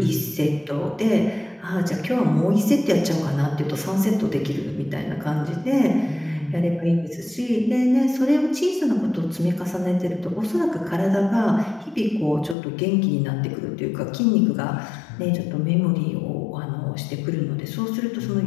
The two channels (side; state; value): right; drops out; at 12.6 s